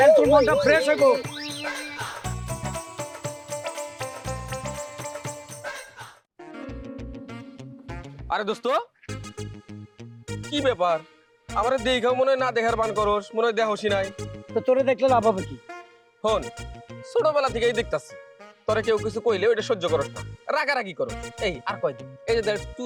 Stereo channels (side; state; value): both; identical; correlation 1.00